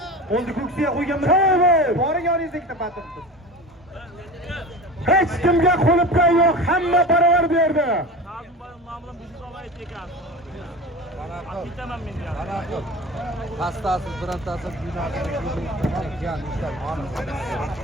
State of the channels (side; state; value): both; normal; correlation 0.32